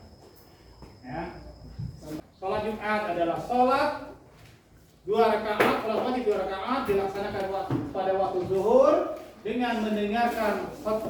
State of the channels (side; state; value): both; identical; correlation 1.00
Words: ya. Sholat Jumat adalah sholat 2 rakaat, sholat wajib 2 rakaat dilaksanakan pada waktu zuhur dengan mendengarkan